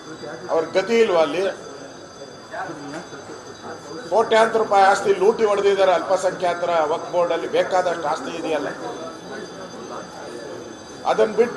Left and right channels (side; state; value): both; identical; correlation 1.00